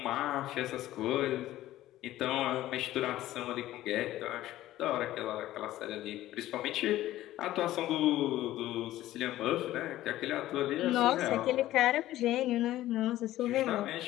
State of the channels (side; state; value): right; quieter; 14.7 dB